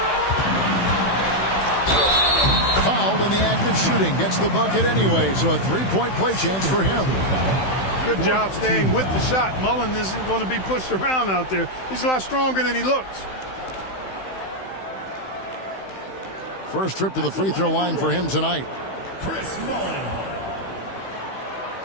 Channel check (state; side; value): late; right; 16 ms